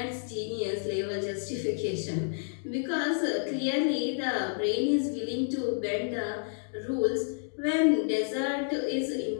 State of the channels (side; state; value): right; silent; digital silence